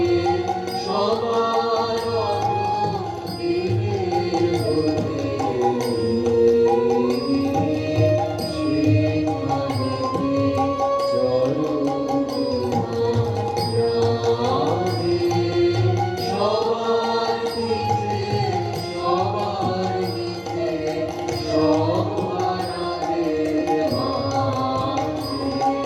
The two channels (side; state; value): both; identical; correlation 1.00